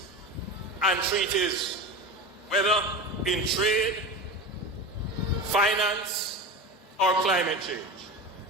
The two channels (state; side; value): normal; both; correlation 0.27